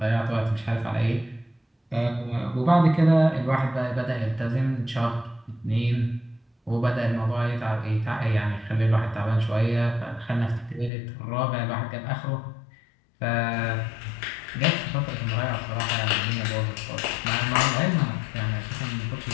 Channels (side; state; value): right; drops out; at 10.9 s